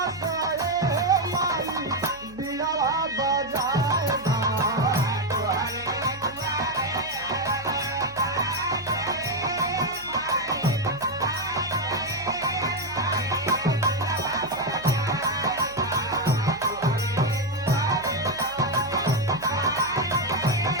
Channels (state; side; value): noise; right; hum, 22 dB below the sound